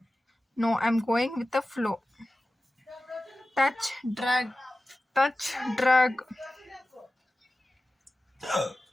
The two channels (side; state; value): both; normal; correlation 0.95